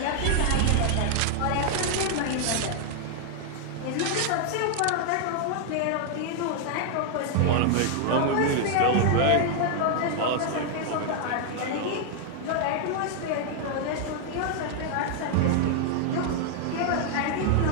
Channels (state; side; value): different; both; correlation 0.00